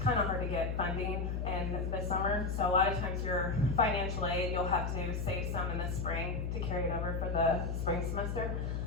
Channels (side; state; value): left; noise; hum, 1 dB below the sound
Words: of hard to get funding in the summer. So a lot of times your financial aid, you'll have to save some in the spring to carry it over for the spring semester.